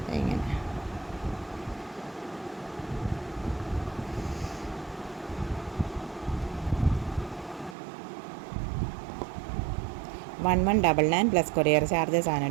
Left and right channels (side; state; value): left; drops out; at 7.8 s